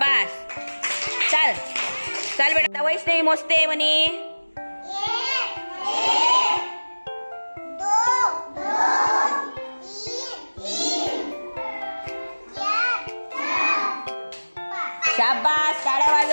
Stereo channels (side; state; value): both; inverted; correlation -1.00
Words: चल चल बेटा, वैष्णवी मोजते म्हणे. शाबास, टाळ्या